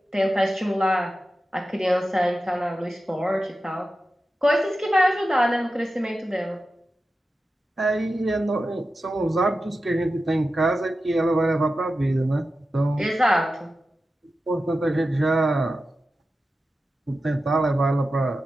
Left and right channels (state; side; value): normal; both; correlation 0.92